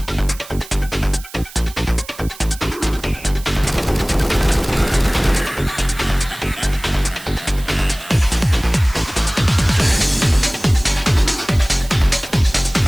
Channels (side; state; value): right; noise; hiss, 18 dB below the sound